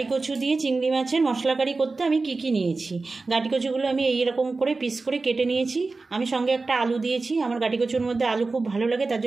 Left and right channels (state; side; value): quieter; left; 3.8 dB